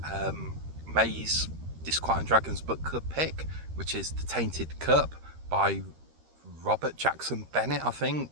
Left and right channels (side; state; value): left; late; 13 ms